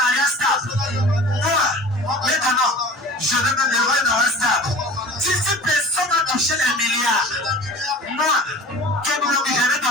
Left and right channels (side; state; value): both; normal; correlation 0.40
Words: mariage stable, moi, maintenant, je vais me lever dans un stable. Si personne n'a touché les milliards, moi,